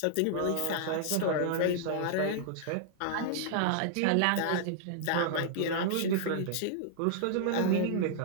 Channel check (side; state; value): both; different; correlation -0.01